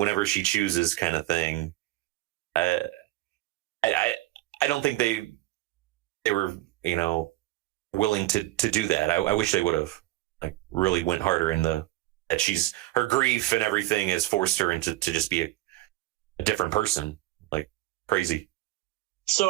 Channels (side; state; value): left; quieter; 17.3 dB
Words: she chooses, kind of thing. I don't think they were, you know, willing to do that. I wish they would have, like, really went harder in that her grief and everything has forced her into to just be a different person, like, crazy.